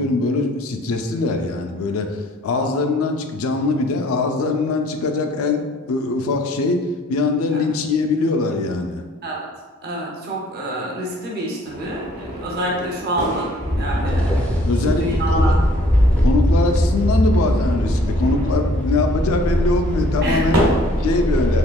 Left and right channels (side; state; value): both; normal; correlation 0.58